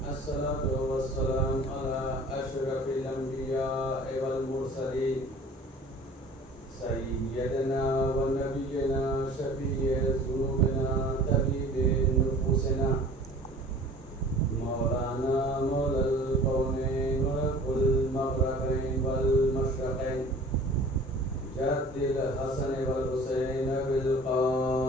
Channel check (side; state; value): both; normal; correlation 0.45